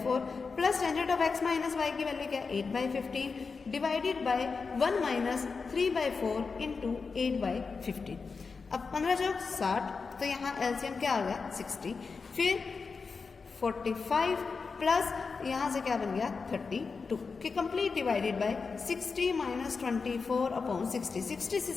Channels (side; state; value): right; quieter; 4.8 dB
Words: plus tangent of x minus y की वैल्यू क्या है 8/15 डिवाइडेड बाय 1 माइनस 3/4 इंटू 8/15। अब 15 जो 60, तो यहाँ एलसीएम क्या आ गया 60, फिर 45 प्लस यहाँ से क्या बन गया 32 कि complete divided bye 60 minus 24 upon 60, 60 से